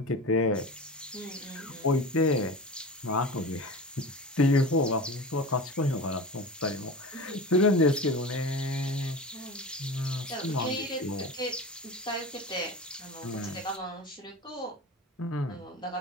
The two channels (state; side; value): normal; both; correlation 0.31